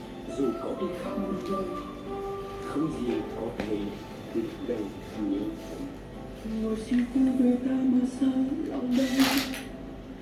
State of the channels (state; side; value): identical; both; correlation 1.00